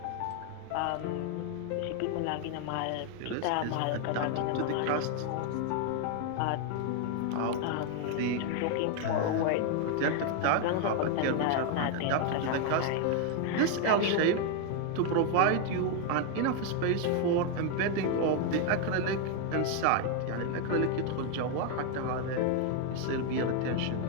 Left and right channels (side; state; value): both; different; correlation 0.00